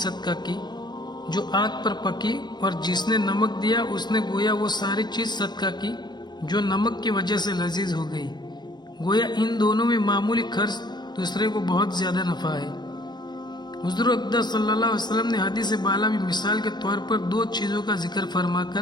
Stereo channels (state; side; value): late; right; 0.21 ms